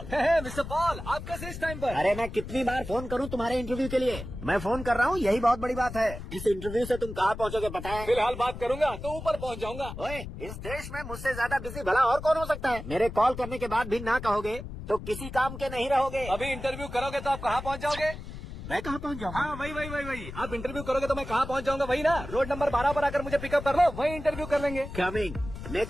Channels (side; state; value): left; noise; rumble, 10 dB below the sound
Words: मिस्टर पॉल, आप कैसे इस टाइम पर? अरे मैं कितनी बार फोन करूं तुम्हारे इंटरव्यू के लिए? मैं फोन कर रहा हूं, यही बहुत बड़ी बात है। इस इंटरव्यू से तुम कहाँ पहुँचोगे पता है? फिलहाल बात करूंगा तो ऊपर पहुंच जाऊंगा। ओए, इस देश में मुझसे ज्यादा बिजी भला और कौन हो सकता है? मेरे कॉल करने के बाद भी ना कहोगे तो किसी काम के नहीं रहोगे। अभी इंटरव्यू करोगे तो आप कहाँ पहुँच जाओगे? मैं कहाँ पहुँच जाऊँगा? हाँ वही। आप इंटरव्यू करोगे तो मैं कहाँ पहुँच जाऊंगा? वही ना, रोड नंबर 12 पर आकर मुझे पिकअप कर लो, वही इंटरव्यू कर लेंगे। कमिंग।